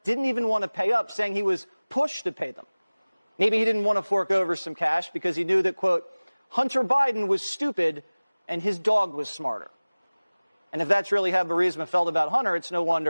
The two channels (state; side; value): inverted; both; correlation -1.00